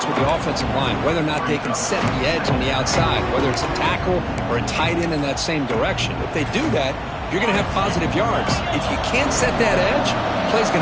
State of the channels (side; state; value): both; identical; correlation 1.00